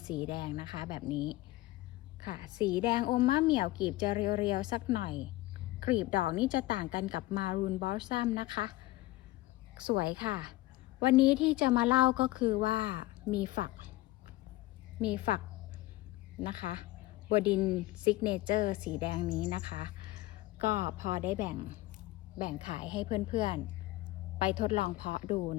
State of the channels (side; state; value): right; quieter; 18.2 dB